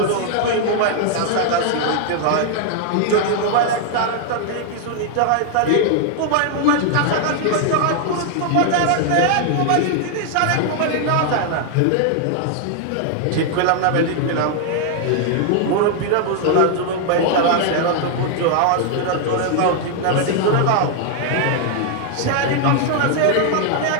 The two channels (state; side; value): different; both; correlation 0.00